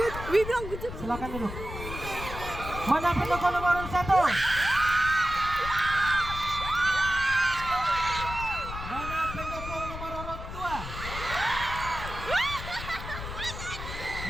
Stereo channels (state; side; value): noise; left; rumble, 9 dB below the sound